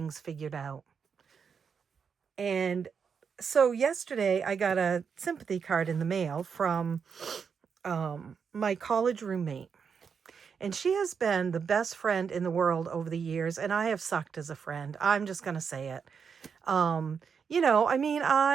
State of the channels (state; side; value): quieter; left; 6.4 dB